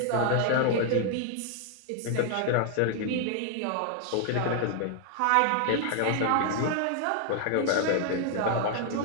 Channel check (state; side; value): different; both; correlation 0.00